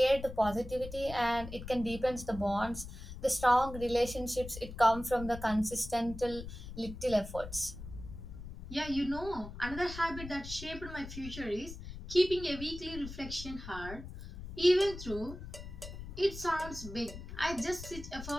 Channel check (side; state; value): left; noise; rumble, 11 dB below the sound